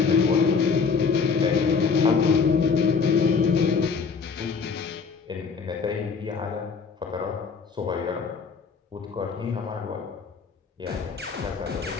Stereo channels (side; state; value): right; quieter; 5.4 dB